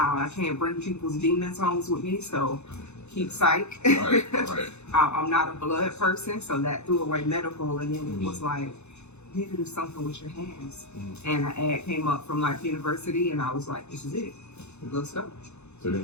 can't bring people's demons home with me, so keep psych. I'm not a blood person, so that threw away medical, and then it was like, you need to do something with your hands. And an ad came up from Life University, and I was like, this is it. Let's go. So they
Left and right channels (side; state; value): right; late; 0.81 ms